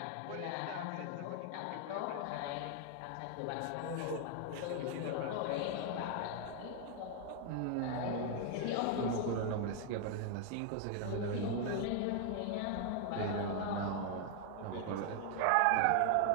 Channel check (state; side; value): different; both; correlation 0.00